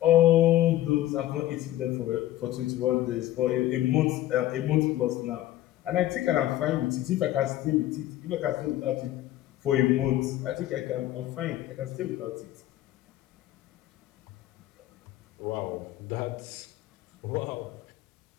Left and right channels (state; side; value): quieter; right; 14.4 dB